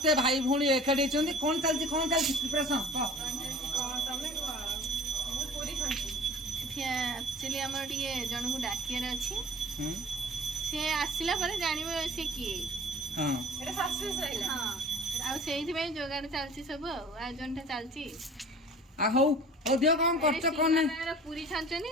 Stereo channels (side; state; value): both; normal; correlation 0.44